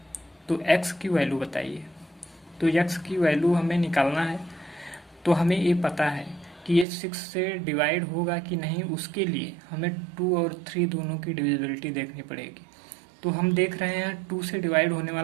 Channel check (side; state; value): left; drops out; at 6.9 s